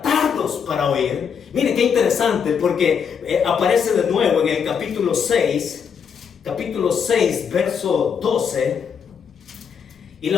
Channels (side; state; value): right; quieter; 7.0 dB